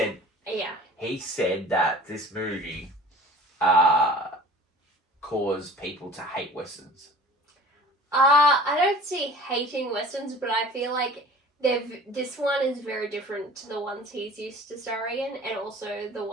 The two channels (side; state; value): both; normal; correlation 0.44